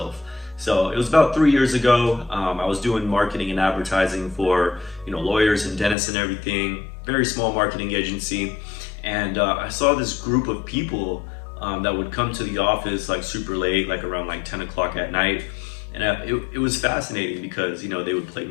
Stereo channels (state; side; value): drops out; right; at 6.0 s